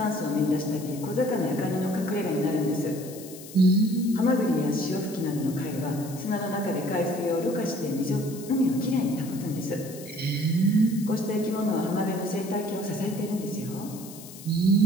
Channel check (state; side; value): noise; left; hiss, 16 dB below the sound